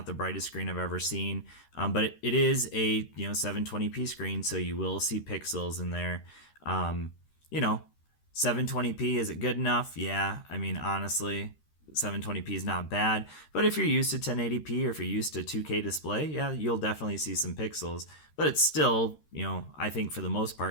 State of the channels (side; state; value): right; late; 13 ms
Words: the brightest screen I've ever seen, but it is a 720p screen, so you will see pixels in there. 720p, is it good enough? Yeah, I mean, honestly, 720p is not bad. But if you're used to 1080p or if you're used to 2K display, yeah, you'll definitely see some pixels. But it's still, I think for the most